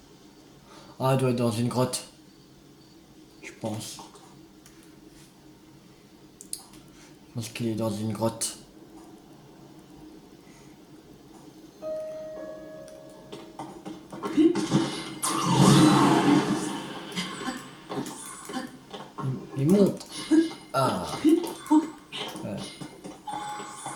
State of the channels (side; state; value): both; identical; correlation 1.00